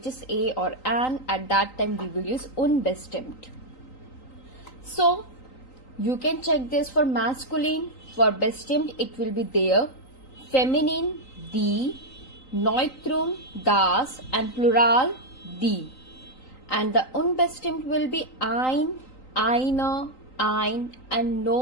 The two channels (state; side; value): late; right; 3.9 ms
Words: is a or an. At that time we will use unbestimmt. So you can check this for masculine. For bestimmt it will be there, feminine die, neutrum das and plural die. And the unbestimmt will be ein, eine, ein and